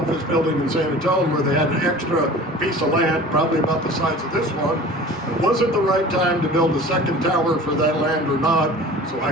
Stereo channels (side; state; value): both; normal; correlation 0.41